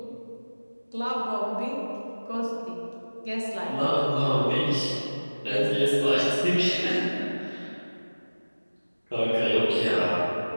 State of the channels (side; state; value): both; inverted; correlation -1.00